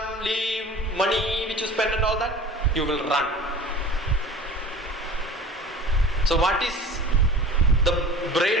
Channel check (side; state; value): both; normal; correlation 0.40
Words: leave, money which you spend and all that? You will run. So what is the